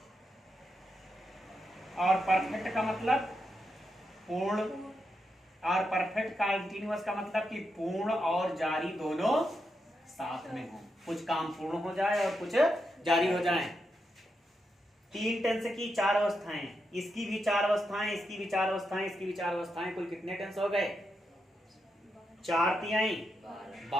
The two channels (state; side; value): normal; both; correlation 0.85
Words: और परफेक्ट का मतलब पूर्ण। और परफेक्ट कॉन्टिन्यूअस का मतलब कि पूर्ण और जारी दोनों साथ में हो। कुछ काम पूर्ण हो जाए और कुछ जारी हो जाए। 3 टेंस की 4 अवस्थाएं, इसकी भी 4 अवस्थाएं, इसकी भी 4 अवस्थाएं, इसकी भी 4 अवस्थाएं। कुल कितने टेंस हो गए? 4 तिहाई